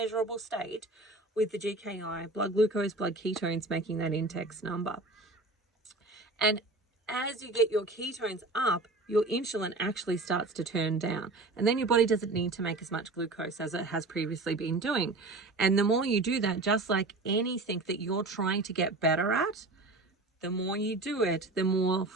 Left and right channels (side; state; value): left; quieter; 3.1 dB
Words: state with the GKI, blood glucose, blood ketones, making that index number. And as you get your ketones up, your insulin actually starts to turn down. And then your body doesn't need to make as much glucose as it has previously been doing. And the more you do that, just like anything that you're trying to get better at, the more you do it, the more